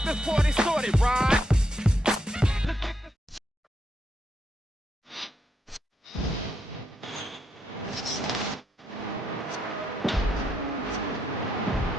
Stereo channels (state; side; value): normal; both; correlation 0.80